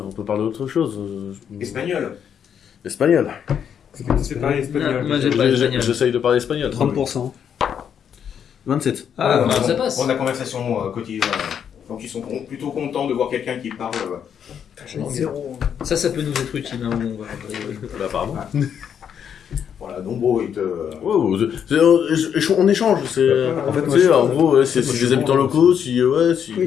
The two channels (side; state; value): right; quieter; 8.2 dB